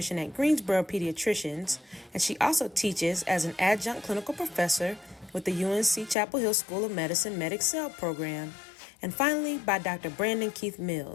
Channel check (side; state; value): right; drops out; at 6.2 s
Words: at Greensboro Pediatricians, and she also teaches as an adjunct clinical professor with the UNC Chapel Hill School of Medicine MedExcel program. And finally, by Dr. Brandon Keith